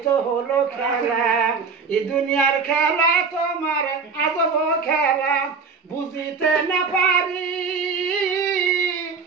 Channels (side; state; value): left; quieter; 5.2 dB